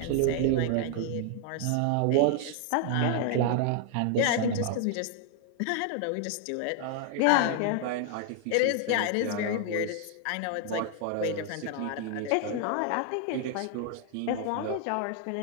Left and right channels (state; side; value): different; both; correlation 0.00